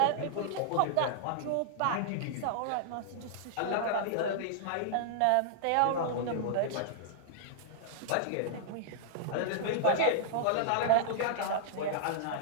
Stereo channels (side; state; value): both; different; correlation -0.02